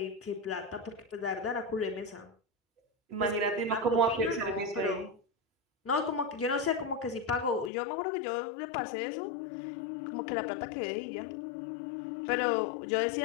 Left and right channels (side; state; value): right; drops out; at 7.7 s